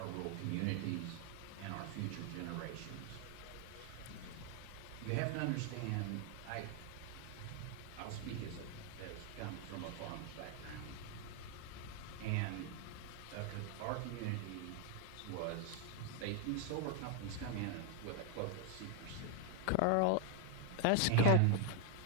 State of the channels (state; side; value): different; both; correlation 0.01